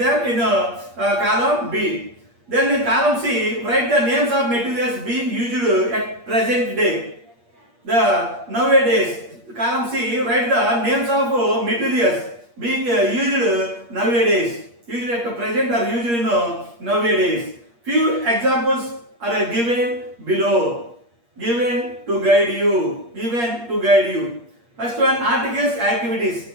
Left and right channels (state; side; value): late; left; 8.5 ms